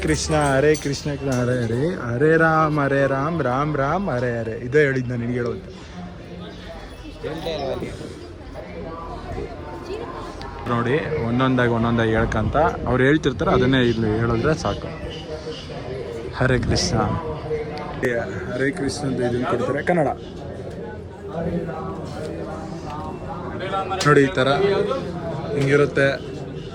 ಕೃಷ್ಣ ಹರೇ ಕೃಷ್ಣ ಹರೇ ಹರೇ, ಹರೇ ರಾಮ್ ರಾಮ್ ರಾಮ್ ಹರೇ ಹರೇ. ಇದೇ ಹೇಳಿದ್ದು ನಾನು ನಿನಗೆ ಹೇಳೋದು. ನೋಡಿ ಒಂದೊಂದಾಗಿ ಹೇಳ್ಕಂತ ಅವ್ರು ಹೇಳ್ತಿರ್ತಾರೆ, ಅದನ್ನೇ ಇಲ್ಲಿ ಹೇಳಿದ್ರೆ ಸಾಕು. ಹರೇ ಕೃಷ್ಣ ಹರೇ ಕೃಷ್ಣ ಅಂತ ಇದನ್ನು ಕೊಡ್ತಾರೆ ಕನ್ನಡ. ನೋಡಿ ಈ ಥರ ಹಿಂಗಿರುತ್ತೆ.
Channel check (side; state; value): both; identical; correlation 1.00